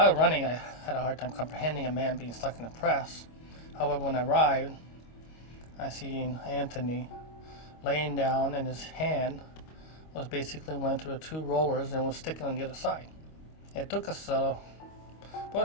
running, I had a hard time comprehending a man being stuck in a press. However, when I arrived, I seen Anthony laying down, and his hand was basically went through the two rollers and was sticking on the other side. It took us about a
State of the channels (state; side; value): late; right; 25 ms